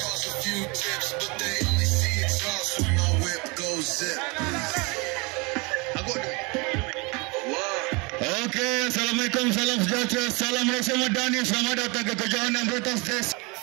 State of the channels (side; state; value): left; quieter; 28.2 dB